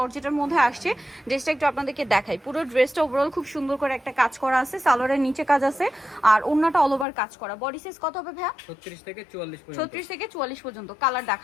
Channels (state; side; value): drops out; right; at 7.1 s